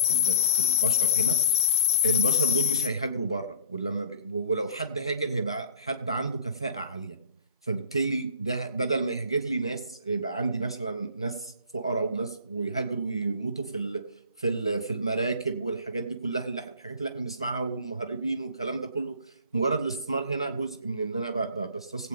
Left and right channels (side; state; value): both; inverted; correlation -0.41